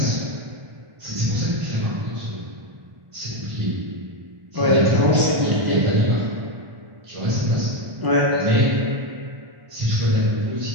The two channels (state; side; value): late; left; 1.0 ms